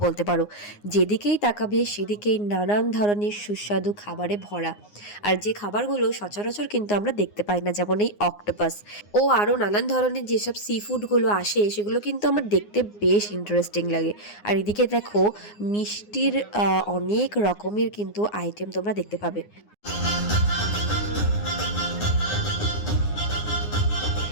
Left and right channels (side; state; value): right; late; 9.7 ms